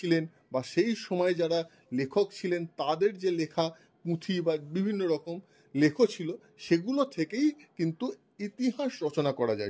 বা সেই সময় যারা লেখক ছিলেন তাদের যে লেখা পুঁথি বা বিভিন্ন রকম লেখ ছিল, সেগুলো থেকেই কিন্তু ইতিহাস রচনা করা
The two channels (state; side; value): identical; both; correlation 1.00